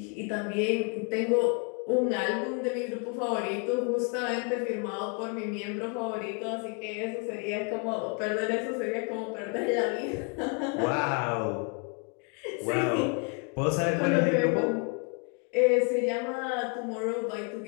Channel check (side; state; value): right; quieter; 36.0 dB